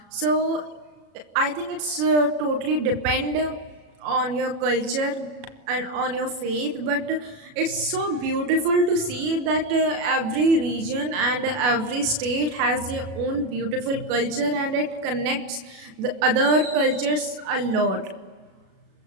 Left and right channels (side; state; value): left; late; 37 ms